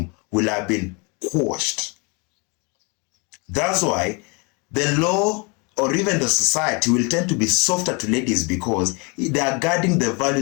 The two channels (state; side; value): quieter; right; 31.2 dB